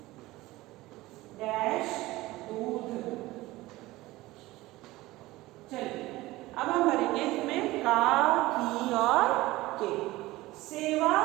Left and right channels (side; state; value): left; quieter; 18.7 dB